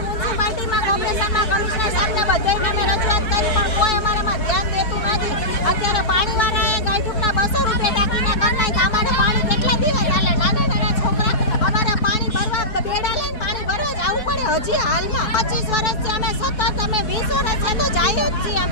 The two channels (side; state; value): right; late; 4.7 ms